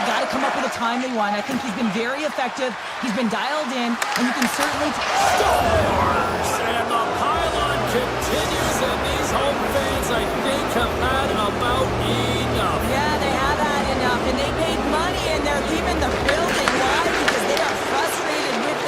got to come up with a timely one. I think he's been very effective. He's been dialed in, and you can certainly... Scores! And the pylon continues, and these home fans, I think, have had about enough. Yeah, they have had enough, and they paid money, and they're leaving the building. Why? Because they are frustrated with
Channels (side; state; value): both; identical; correlation 1.00